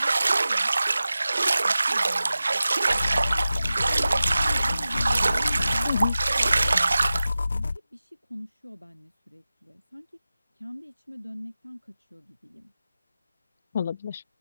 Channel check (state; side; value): inverted; both; correlation -0.95